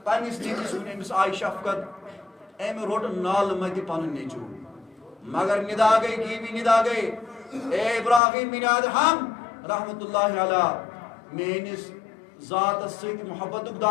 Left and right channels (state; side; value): drops out; right; at 8.2 s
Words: پنس نیچس ون امس آئی شفقت ام روٹ نال مت پن نیچو مگر ندا گئی گیوی ندا گئی اے ابراہیم بن ادہم رحمت اللہ علیہ میانس ذات ست محبت